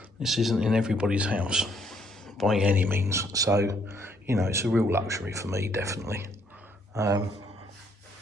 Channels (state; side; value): normal; both; correlation 0.68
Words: in everybody's house by any means. So, you know, it's a real luxury for me, definitely. But